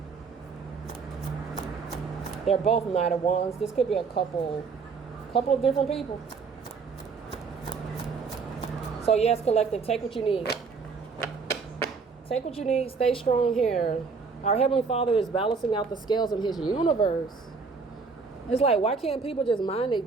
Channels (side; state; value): left; quieter; 5.0 dB